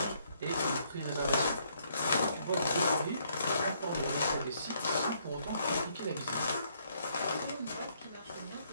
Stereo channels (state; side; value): inverted; both; correlation -0.69